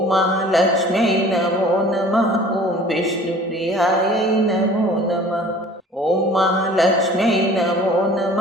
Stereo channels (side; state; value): both; normal; correlation 0.47